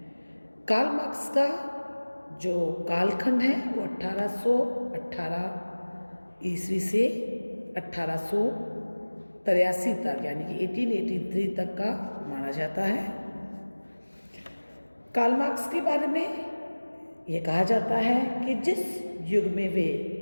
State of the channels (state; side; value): inverted; both; correlation -1.00